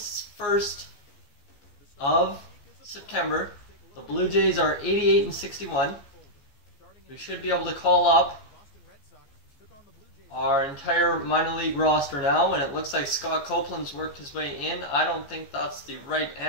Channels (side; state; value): right; late; 14 ms